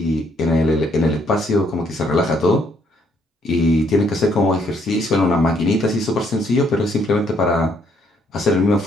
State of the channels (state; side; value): normal; both; correlation 0.69